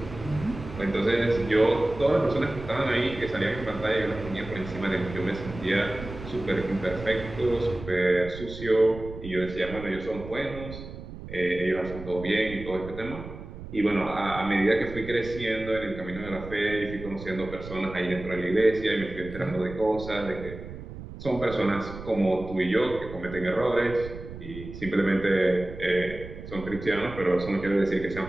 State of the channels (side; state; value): right; noise; rumble, 12 dB below the sound